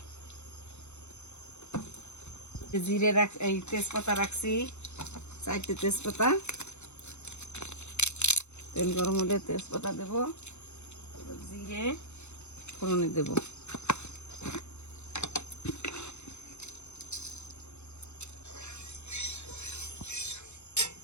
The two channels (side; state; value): right; late; 0.82 ms